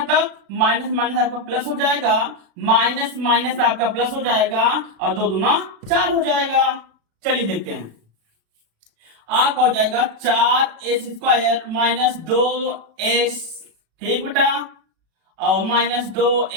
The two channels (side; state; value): left; late; 36 ms